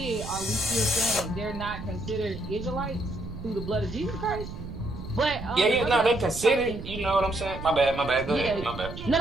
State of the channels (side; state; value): right; noise; rumble, 10 dB below the sound